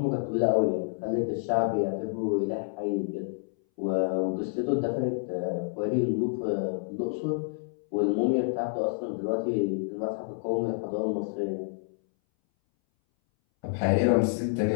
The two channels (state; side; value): silent; right; 59 dB below the other